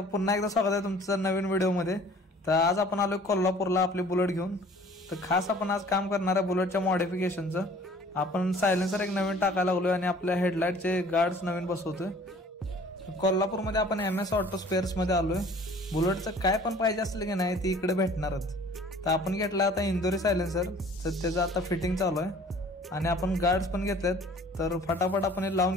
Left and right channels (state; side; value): normal; both; correlation 0.51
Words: पुन्हा एकदा स्वागत आहे तुमचं नवीन व्हिडिओमध्ये। तर आज आपण आलोय कोल्हापूरला आपली बुलेट घेऊन। तर खास आपण आज काम करणार आहे बुलेटच्या मॉडिफिकेशनचं। आपण सायलेन्सर एक नवीन टाकायला लागलोय आणि आपल्या हेडलाइटचे गार्ड्स नवीन बसवतोय। कोल्हापूरमध्ये आपण MS ऑटो स्पेअर्स मध्ये आलोय। बुलेटचं काय पण पाहिजे असलं की नाही ती इकडे भेटणारच। तर आपण घेतला आता इंदोरी सायलेन्सर, तर त्याचं आता फिटिंग चालू आहे आणि आपण गार्ड्स पण घेतलेत। तर फटाफट आपण हे